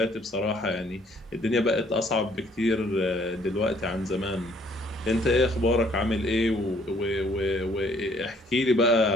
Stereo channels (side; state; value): both; normal; correlation 0.62